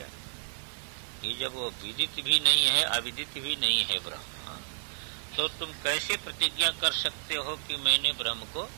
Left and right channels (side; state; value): left; silent; digital silence